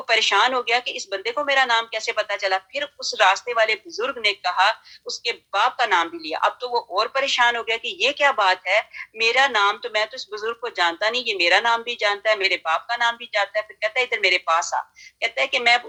پریشان ہو گیا کہ اس بندے کو میرا نام کیسے پتا چلا۔ پھر اس راستے والے بزرگ نے کہا، اس کے باپ کا نام بھی لیا۔ اب تو وہ اور پریشان ہو گیا کہ یہ کیا بات ہے، میرا نام تو، میں تو اس بزرگ کو جانتا نہیں، یہ میرا نام بھی جانتا ہے، میرے باپ کا نام بھی جانتا ہے۔ پھر کہتا ہے ادھر میرے پاس آ۔ کہتا ہے کہ میں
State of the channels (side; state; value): both; identical; correlation 1.00